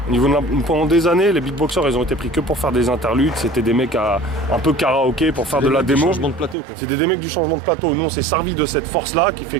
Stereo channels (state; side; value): drops out; left; at 6.6 s